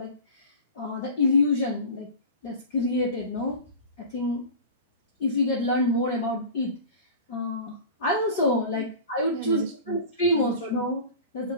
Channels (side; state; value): both; inverted; correlation -0.34